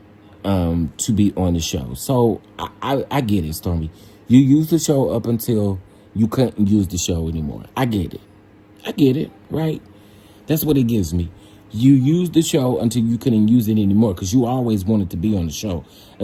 to be on the show. So I get it, Stormi. You used the show up until you couldn't use the show anymore. I get it, right? That's what it gives me. You used the show until you couldn't use it anymore because you always wanted to be on the show.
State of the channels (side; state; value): both; identical; correlation 1.00